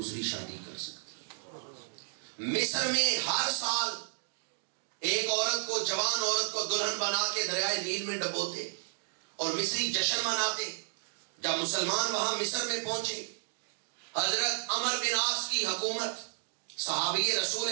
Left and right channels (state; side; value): silent; left; digital silence